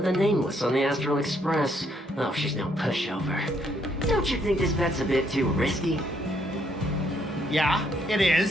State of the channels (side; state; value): both; normal; correlation 0.71